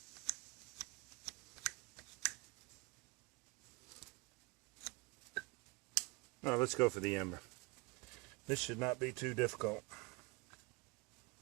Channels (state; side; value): quieter; left; 27.2 dB